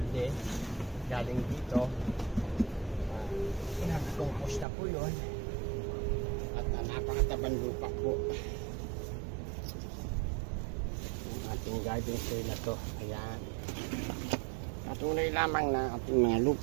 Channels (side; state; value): left; drops out; at 4.7 s